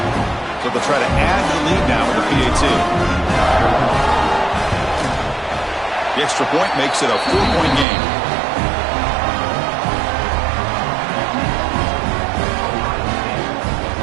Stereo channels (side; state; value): left; drops out; at 7.9 s